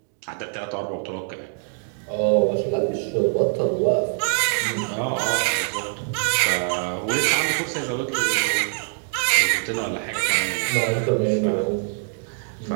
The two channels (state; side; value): silent; left; 61 dB below the other